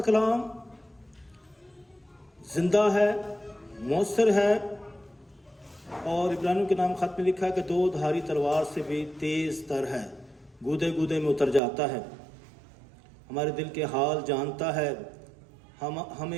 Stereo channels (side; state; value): left; drops out; at 11.6 s